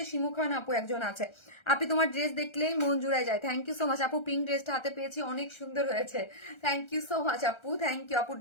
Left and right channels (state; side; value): late; right; 1.3 ms